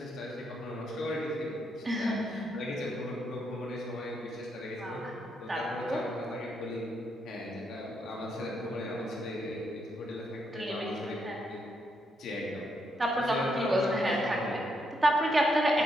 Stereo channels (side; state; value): both; normal; correlation 0.77